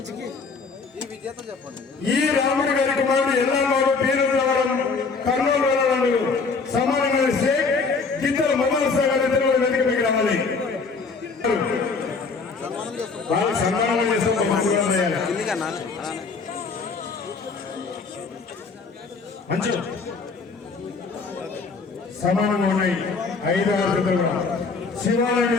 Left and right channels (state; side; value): quieter; right; 4.6 dB